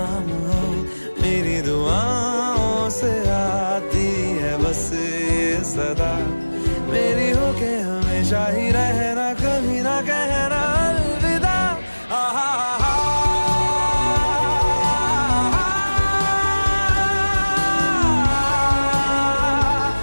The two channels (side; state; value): both; inverted; correlation -1.00